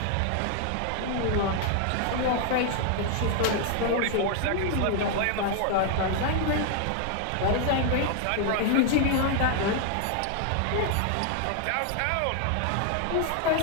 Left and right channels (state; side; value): different; both; correlation 0.00